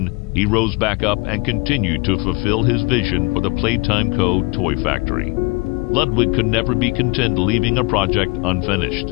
he rose back up and continued to fulfill his vision for the Playtime Co. toy factory. Ludwig could never be content leaving a project unfinished.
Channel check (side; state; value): right; quieter; 26.9 dB